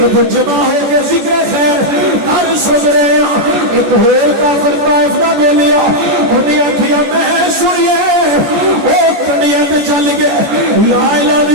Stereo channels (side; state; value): left; late; 14 ms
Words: جمع ہو کے ذکر خیر کر سن رہے ہیں. ایک ہور کافر طائف دا بولیا انہیں آکھیا میں سنیے او کنڈیاں تے چل گئے لا الہ